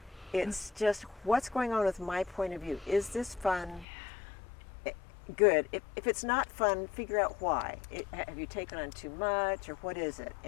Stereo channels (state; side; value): drops out; right; at 3.9 s